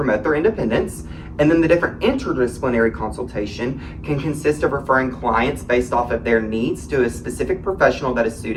their independence. And then the different interdisciplinary consultation can consist of referring clients based off of their needs to a specific professional that is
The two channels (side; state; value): both; identical; correlation 1.00